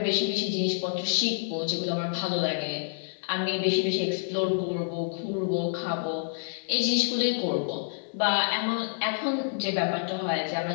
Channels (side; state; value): right; silent; digital silence